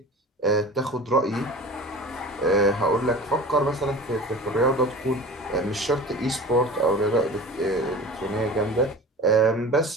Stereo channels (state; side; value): normal; both; correlation 0.37